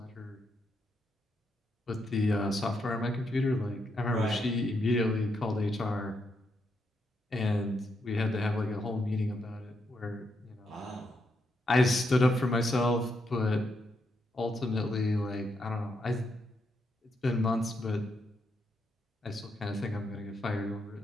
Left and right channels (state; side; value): normal; both; correlation 0.80